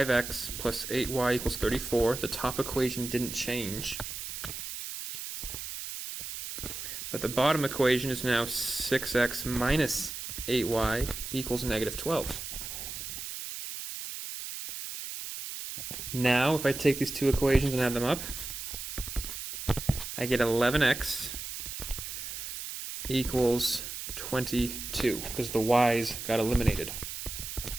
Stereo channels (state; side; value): noise; right; hiss, 7 dB below the sound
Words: plus 8y equals 34. The top equation didn't change. But the bottom equation is now 6x minus 8y equals negative 12. Now, if I take these two equations and add them up, I get 11x equals 22, because the y's got eliminated.